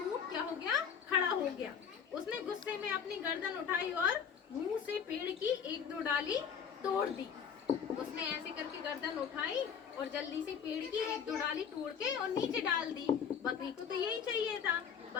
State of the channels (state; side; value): quieter; right; 7.3 dB